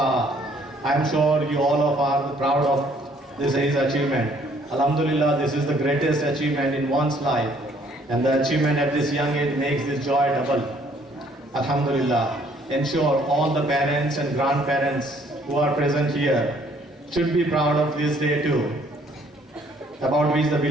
I am sure you all of are proud of this his achievement. Alhamdulillah, this is the greatest achievement in one's life, and the achievement at this young age makes this joy double. Alhamdulillah. Ensure all the parents and grandparents who are present here should be proud of this day too, about which the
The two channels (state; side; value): normal; both; correlation 0.62